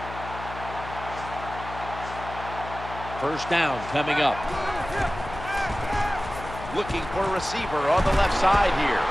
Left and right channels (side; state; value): left; noise; hum, 12 dB below the sound